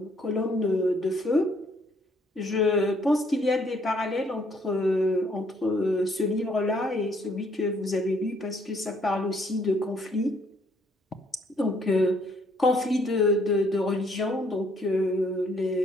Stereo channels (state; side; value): normal; both; correlation 0.66